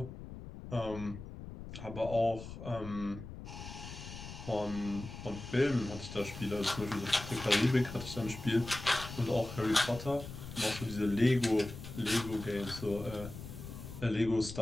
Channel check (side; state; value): left; noise; rumble, 11 dB below the sound